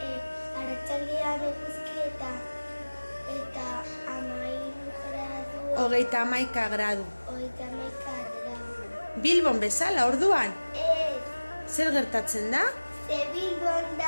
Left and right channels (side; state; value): both; inverted; correlation -1.00